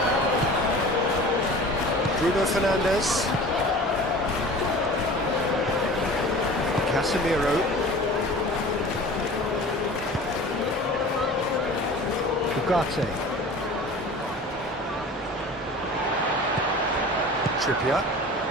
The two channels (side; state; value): both; normal; correlation 0.40